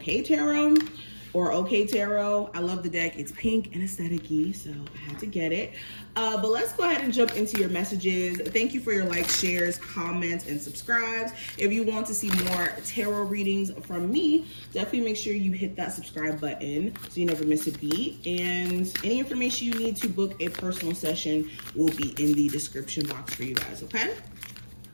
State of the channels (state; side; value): inverted; both; correlation -1.00